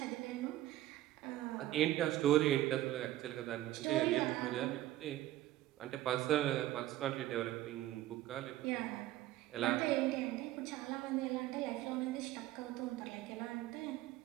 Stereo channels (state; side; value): quieter; left; 14.8 dB